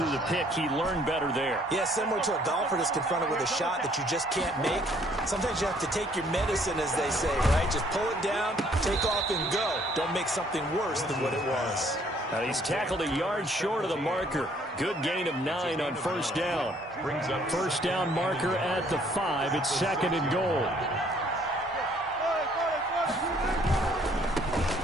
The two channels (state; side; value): normal; both; correlation 0.62